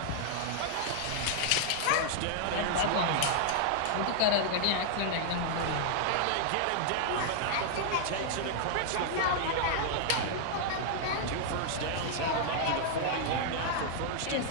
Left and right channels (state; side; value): different; both; correlation -0.01